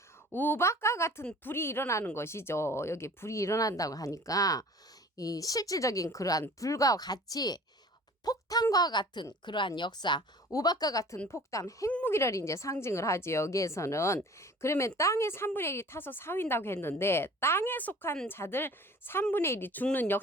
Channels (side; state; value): both; normal; correlation 0.46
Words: 우박과 같은 불이 일어나는 것이죠. 여기 불이 일어난다고 하니까 이 실질적인 그러한 불과 같이 폭탄과 같은 그러한 역사, 우박과 같은 폭탄, 핵무기를 이제 상징을 하지 여기에서는. 그러면 땅의 3분의 1이 타서 사윈다고 했는데 땅에 속한 자들 3분의 1이 죽는